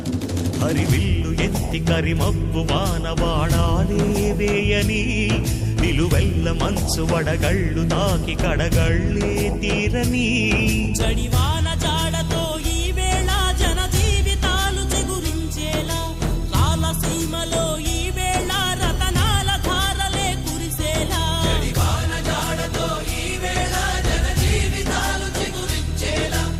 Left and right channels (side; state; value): both; identical; correlation 1.00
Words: హరివిల్లు ఎత్తి కరిమబ్బు వానవాడాలే వేయని నిలువెల్ల మంచు వడగళ్ళు తాకి కడగళ్ళే తీరని జడివాన జాడతో ఈ వేళ జన జీవితాలు చిగురించేలా రాలసీమలో ఈ వేళ రతనాల ధారలే కురిసేలా జడివాన జాడతో ఈ వేళ జన జీవితాలు చిగురించేలా